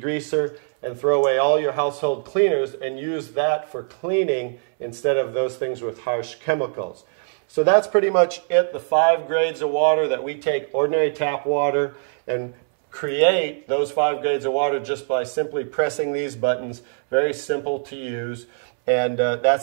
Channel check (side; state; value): left; silent; 64 dB below the other